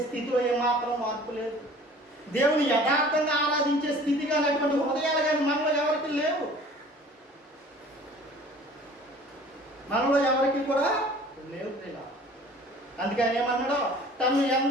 స్థితిలో ఏమాత్రం మార్పు లేదు. దేవుని యథార్థంగా ఆరాధించే స్థితి కానీ అటువంటి హృదయాలు కానీ మనలో ఎవరికి లేవు. మనలో ఎవరికి కూడా లేవు. అందుకే ఆయన ఏమన్నాడు, తను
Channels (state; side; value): normal; both; correlation 0.48